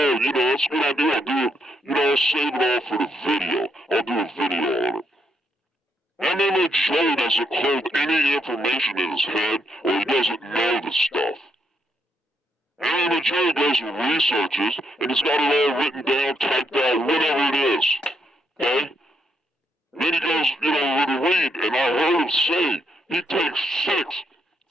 a good idea. I'll do it, I'll save it all for the video. I'll do a video on it. MMA Joe doesn't hold any information in his head, or he doesn't know the stuff. MMA Joe goes and researches, and he's got it all written down, typed out, whatever it is. Okay? Then he goes, with a read, and I heard him say he takes 6,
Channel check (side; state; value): both; normal; correlation 0.76